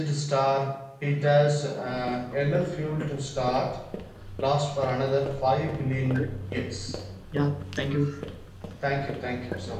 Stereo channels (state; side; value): identical; both; correlation 1.00